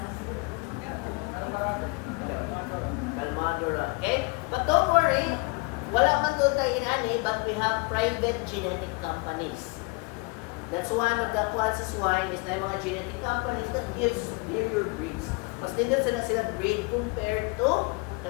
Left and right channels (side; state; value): right; quieter; 28.6 dB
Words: Kalmadura. Okay? But don't worry, wala man doon tayo inani, but we have private genetic companies. That's one of the quads sa swine is na yung mga genetic companies that gives superior breeds. Mas nindot sila breed compared to